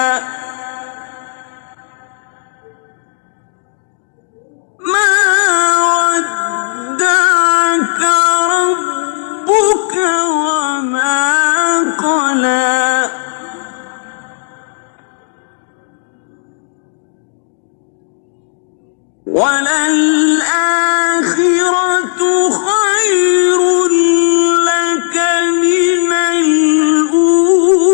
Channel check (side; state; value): right; silent; digital silence